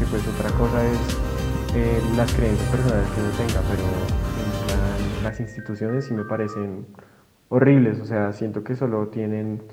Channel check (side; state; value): both; identical; correlation 1.00